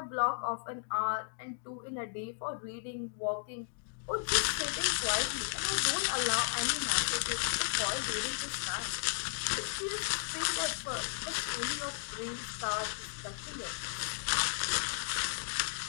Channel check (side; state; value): right; silent; digital silence